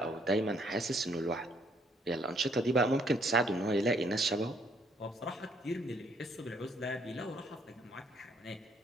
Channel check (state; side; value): normal; both; correlation 0.67